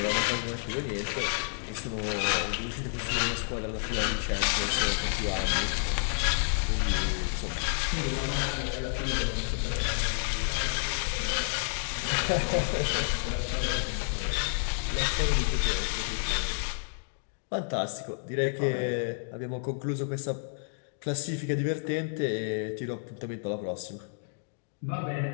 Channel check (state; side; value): silent; right; digital silence